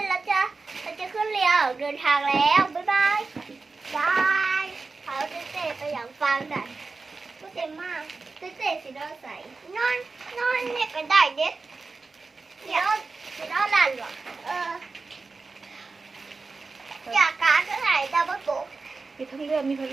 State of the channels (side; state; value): left; quieter; 4.0 dB